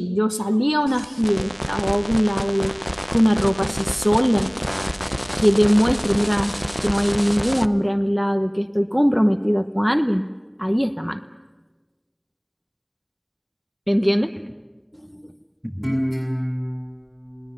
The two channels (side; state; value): both; identical; correlation 1.00